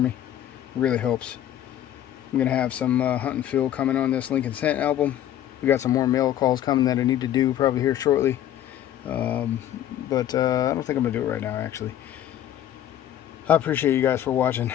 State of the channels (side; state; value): right; quieter; 11.5 dB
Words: It really helps. I'm gonna have some hunt and fill coming on this Lincoln Scent album. We got some more mail calls coming that I need to do probably here shortly. But I don't think I'm gonna do it right now, actually. I appreciate you guys for watching.